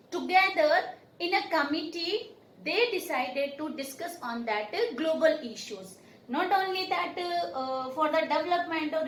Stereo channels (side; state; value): both; identical; correlation 1.00